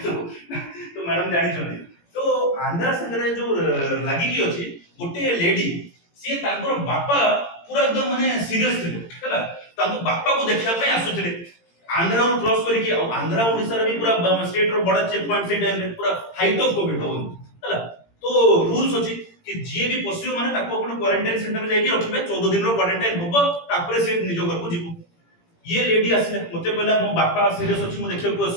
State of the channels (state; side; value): late; right; 17 ms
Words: तो मैडम जानि छथि तो आंध्रा संग रे जो लागि कि अछि गोटे लेडी से तांकर बापा पूरा एकदम माने सीरियस थिले हला तांको बापा को देखिया पय आसुथिले आंध्रा रो क्रॉस करी कि आंध्रा ओडिसा रे भी पूरा स्टेट रो बड़ा चेक पॉइंट से टाइम रे पूरा हाइट ऑफ कोविड हो हला तो रूल्स अछि कि जे भी पसियो माने ताको अपन क्वारंटाइन सेंटर में जाके रखिबे 14 दिन रो क्वारंटाइन होबो तापरे से निजो घर को जीवो ये लेडी आसले मते कहला मो बापा सीरियस अछि मो देखिया को